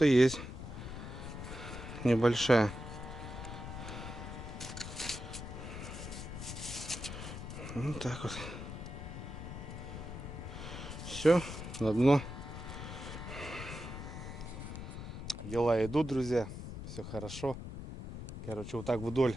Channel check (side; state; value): left; noise; rumble, 8 dB below the sound